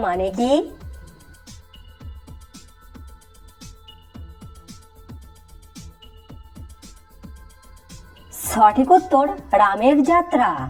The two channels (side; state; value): both; identical; correlation 1.00